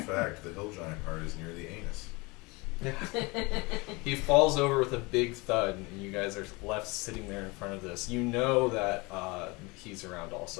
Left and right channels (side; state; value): right; quieter; 25.7 dB